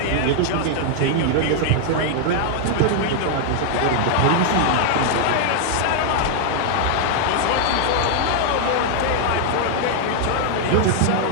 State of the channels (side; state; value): both; different; correlation 0.00